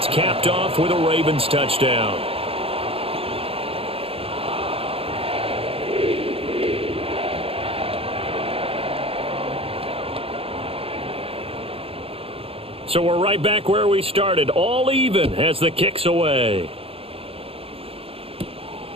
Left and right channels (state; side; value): late; left; 0.27 ms